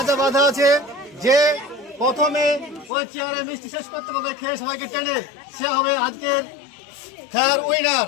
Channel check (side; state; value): right; drops out; at 2.9 s